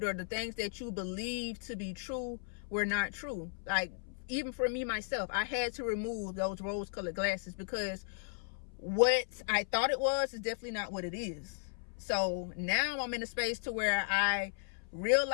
or the things that you believe to be true were not true. Like, even for me myself, I had to remove those rose-colored glasses, because what I thought it was is definitely not what it is. So now I'm in a space to where I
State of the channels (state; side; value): silent; right; 54 dB below the other